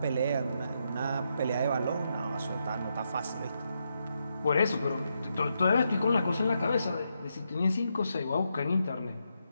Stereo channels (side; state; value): both; inverted; correlation -0.82